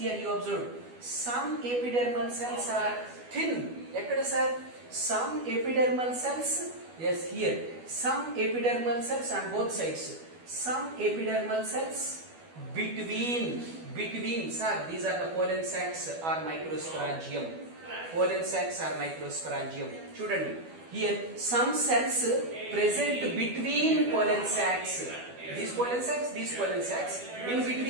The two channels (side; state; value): left; late; 12 ms